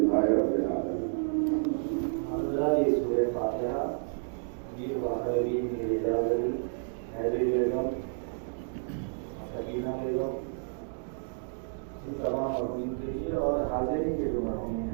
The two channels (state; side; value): silent; left; digital silence